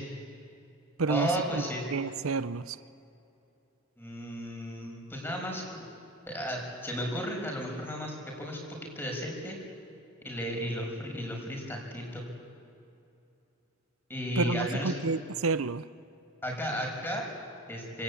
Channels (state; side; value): normal; both; correlation 0.32